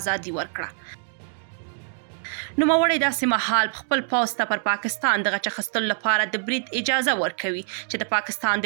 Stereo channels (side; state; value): left; silent; digital silence